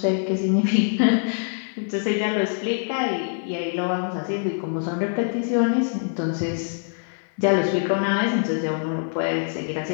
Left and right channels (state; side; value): silent; right; 63 dB below the other